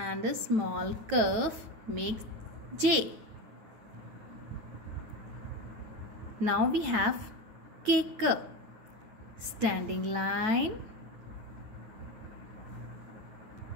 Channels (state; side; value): late; left; 9.2 ms